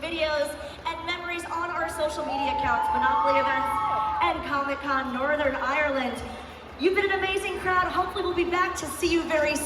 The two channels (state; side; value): identical; both; correlation 1.00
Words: videos and memories on our social media accounts, Monopoly Events and ComicCon Northern Ireland. You've been an amazing crowd. Hopefully we'll be back to see you very